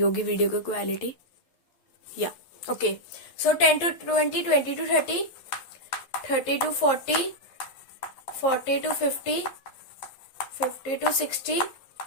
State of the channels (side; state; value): right; late; 11 ms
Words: वीडियो की क्वालिटी, या okay. So 10 to 20, 20 to 30, 30 to 40, 40 to 50, 50 to 60,